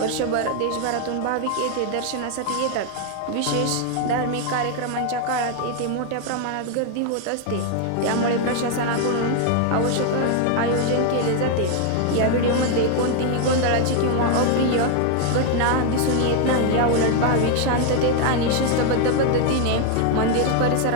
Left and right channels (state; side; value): different; both; correlation 0.00